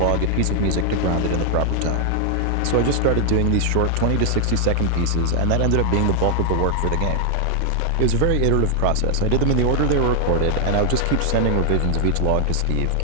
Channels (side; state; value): both; different; correlation 0.00